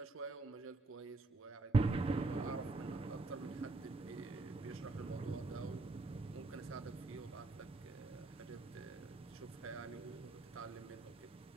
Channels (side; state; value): left; quieter; 3.1 dB